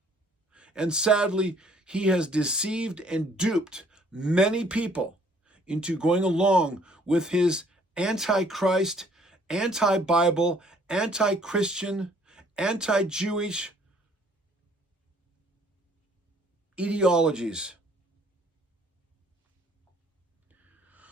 And sadly, he has deceived and duped many people into going along with his anti-Christ, anti-Bible, anti-Christian, anti-Jewish ideologies.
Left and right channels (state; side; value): normal; both; correlation 0.60